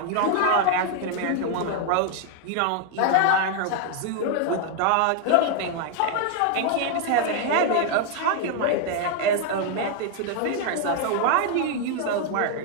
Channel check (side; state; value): both; different; correlation 0.00